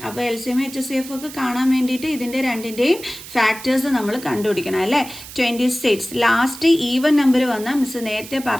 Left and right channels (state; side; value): noise; right; hiss, 14 dB below the sound